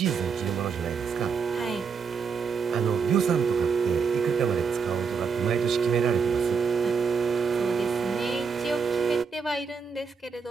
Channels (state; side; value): quieter; left; 5.6 dB